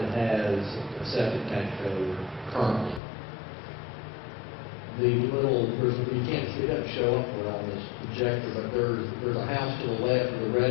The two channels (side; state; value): right; drops out; at 3.0 s